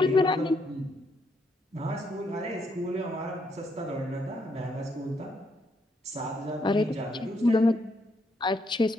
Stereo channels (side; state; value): both; normal; correlation 0.75